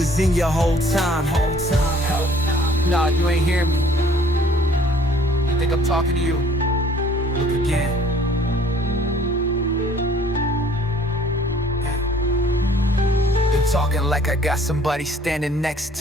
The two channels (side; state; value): both; normal; correlation 0.56